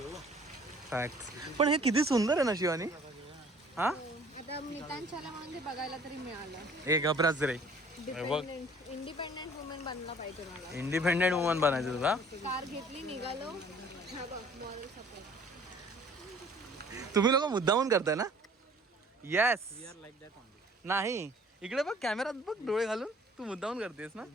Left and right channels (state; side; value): normal; both; correlation 0.53